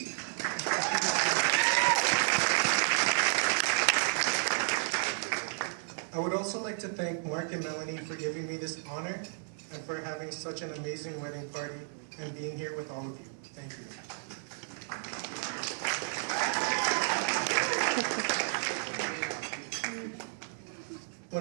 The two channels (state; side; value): silent; left; digital silence